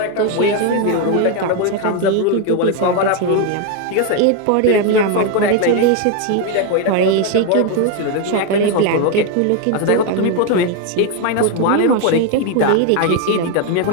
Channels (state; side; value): different; both; correlation 0.01